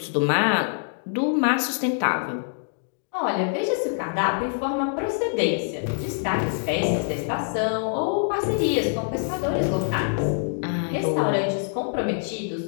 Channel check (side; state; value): right; silent; digital silence